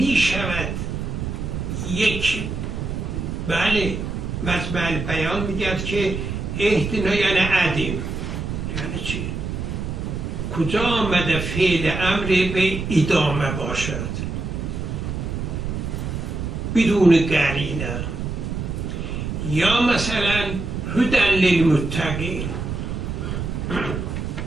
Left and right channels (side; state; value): right; noise; rumble, 4 dB below the sound